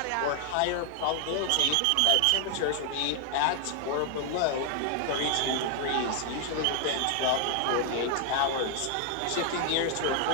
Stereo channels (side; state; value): both; different; correlation 0.00